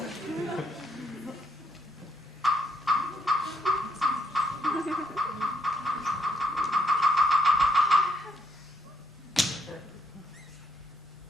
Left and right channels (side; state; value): both; normal; correlation 0.73